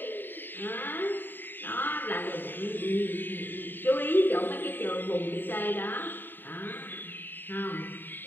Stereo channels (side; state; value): right; late; 0.093 ms